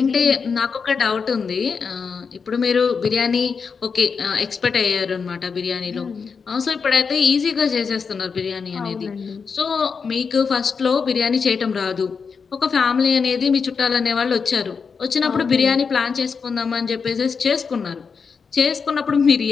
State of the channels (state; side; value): quieter; right; 5.6 dB